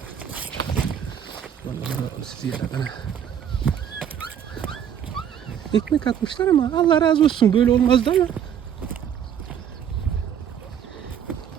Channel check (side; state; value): left; quieter; 8.9 dB